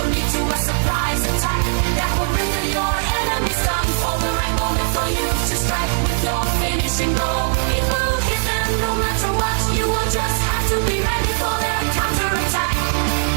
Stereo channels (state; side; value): silent; left; 66 dB below the other